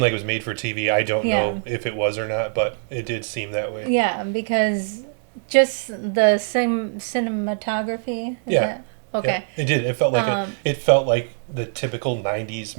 like it was made for TV. I don't know if it was or not, but it did seem that way. Yeah, because just the same cinematography. Okay. Yeah, it did. It felt like the typical 90s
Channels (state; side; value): silent; left; 64 dB below the other